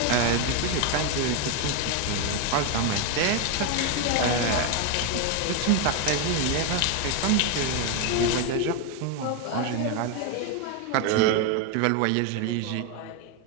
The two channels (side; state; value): both; different; correlation 0.02